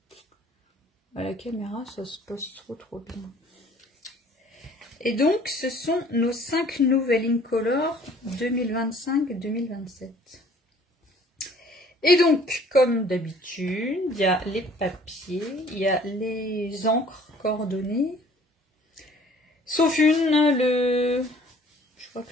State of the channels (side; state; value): both; normal; correlation 0.55